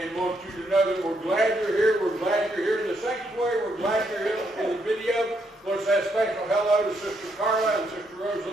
want you to know that we're glad you're here. We're glad you're here in the sanctuary. We're glad you're here in the video. Want to say a special hello to Sister Carla and Sister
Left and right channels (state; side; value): normal; both; correlation 0.76